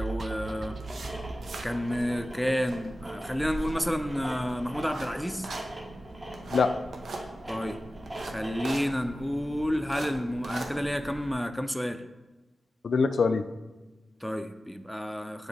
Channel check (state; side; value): normal; both; correlation 0.94